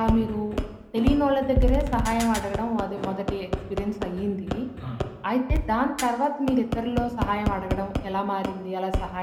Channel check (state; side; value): identical; both; correlation 1.00